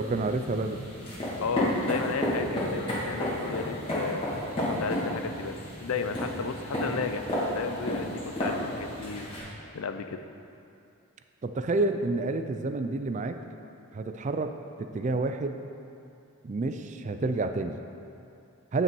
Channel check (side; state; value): both; normal; correlation 0.26